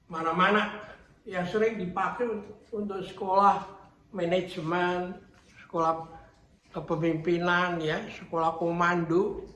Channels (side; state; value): both; identical; correlation 1.00